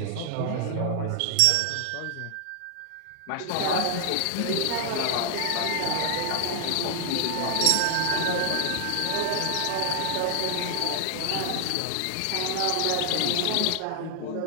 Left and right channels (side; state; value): both; different; correlation 0.00